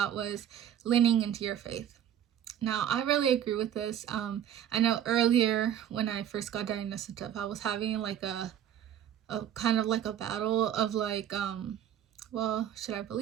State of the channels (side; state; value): left; quieter; 10.2 dB